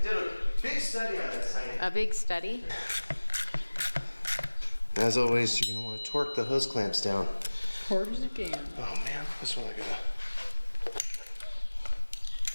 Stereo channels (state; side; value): inverted; both; correlation -1.00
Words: did a big study on this, honey. a big study. As always, you're gonna want to torque the hose clamps down. Hard as it can. Oh man, this one I